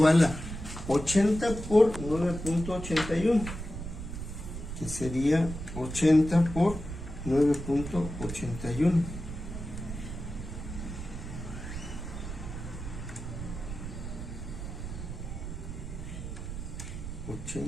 a 80 por 9.81, que sería 80 por 9.81.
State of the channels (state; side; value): noise; right; rumble, 8 dB below the sound